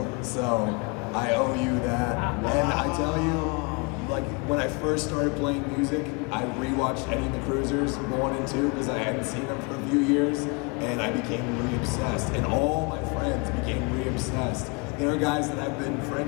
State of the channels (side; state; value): right; quieter; 30.6 dB